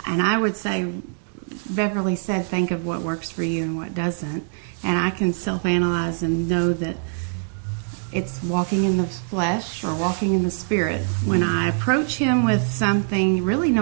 I would say Beverly said, think of what works for you and what doesn't, and I can self-analyze and know that it's walking in the flesh or walking in the spirit. When I approach him with something, really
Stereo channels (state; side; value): silent; left; digital silence